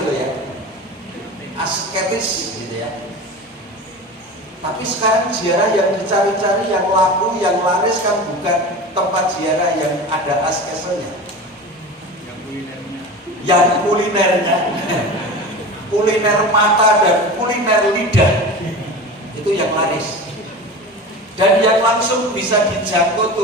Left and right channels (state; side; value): normal; both; correlation 0.32